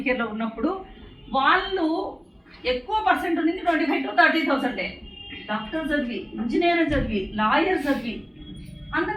కేర్లో ఉన్నప్పుడు వాళ్ళు ఎక్కువ పర్సెంట్ ఉంది 25,000 to 30,000. డాక్టర్ చదివి, ఇంజనీర్ చదివి, లాయర్ చదివి,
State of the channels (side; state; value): both; identical; correlation 1.00